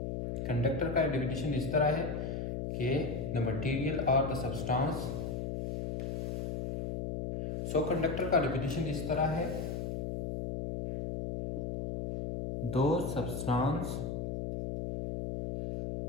कंडक्टर का डिफिनीशन इस तरह है कि द मटेरियल और द सब्सटेंस। सो कंडक्टर का डिफिनीशन इस तरह है, दो सब्सटेंस,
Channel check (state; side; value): noise; left; hum, 3 dB below the sound